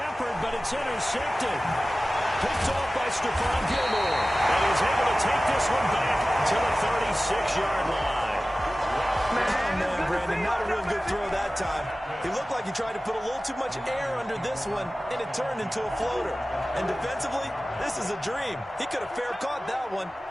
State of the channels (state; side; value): normal; both; correlation 0.96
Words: but it's intercepted. Picked off by Stephon Gilmore. And he's able to take this one back to the 36-yard line. Man, Brandon, not a real good throw that time. He looked like he tried to put a little too much air under this one, and it turned into a floater. And defensively, this is a dream. He could have fair caught that one.